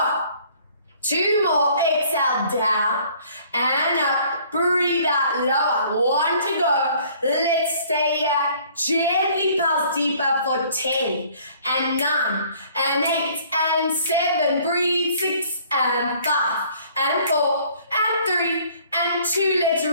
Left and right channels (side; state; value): both; inverted; correlation -0.57